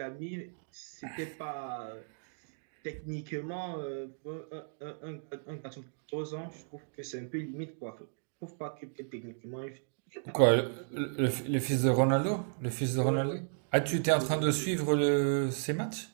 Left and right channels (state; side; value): silent; left; digital silence